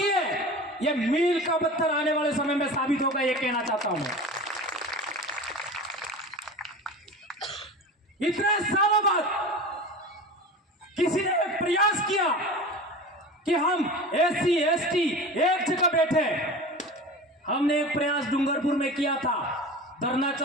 है। यह मील का पत्थर आने वाले समय में साबित होगा, यह कहना चाहता हूं मैं। इतने सालों बाद किसी ने एक प्रयास किया कि हम एससी एसटी एक जगह बैठे। हमने एक प्रयास डूंगरपुर में किया था, धरना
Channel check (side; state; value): both; normal; correlation 0.33